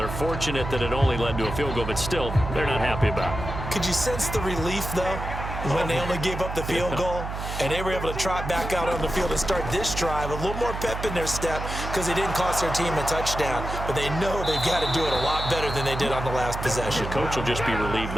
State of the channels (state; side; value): noise; right; hum, 6 dB below the sound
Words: fortunate that it only led to a field goal, but still, they're not happy about it. Could you sense the relief, though, when they only gave up the field goal and they were able to trot back out on the field and start this drive a little more pep in their step because they didn't cost their team a touchdown, but they know they've got to do it a lot better than they did on the last possession. The coach will just be relieved,